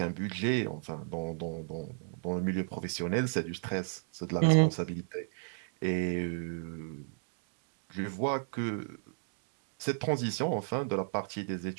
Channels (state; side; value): silent; left; digital silence